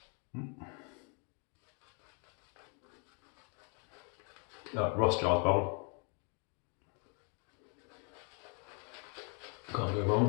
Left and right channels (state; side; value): quieter; right; 37.7 dB